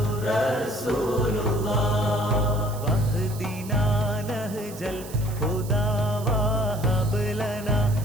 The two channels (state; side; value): noise; right; hiss, 16 dB below the sound